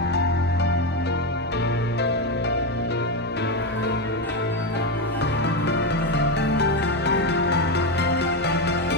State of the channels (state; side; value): normal; both; correlation 0.11